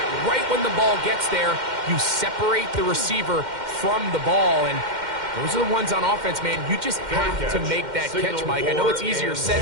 right when the ball gets there, you separate the receiver from the ball. And those are the ones on offense, man. You just have to make that catch, Mike. I know it's easier said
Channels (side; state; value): left; late; 2.1 ms